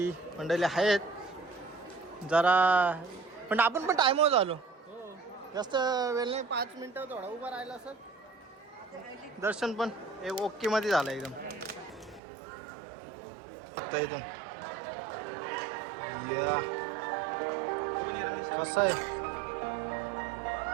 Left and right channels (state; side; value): drops out; left; at 12.2 s